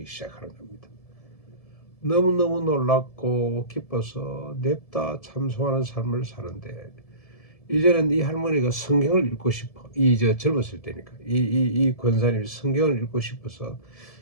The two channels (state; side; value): late; right; 1.7 ms